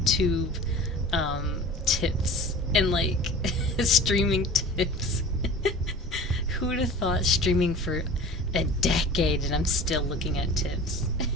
tips and like streaming tips. Who would have thought streaming for a decade and I'm still looking at tips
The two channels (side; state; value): both; normal; correlation 0.39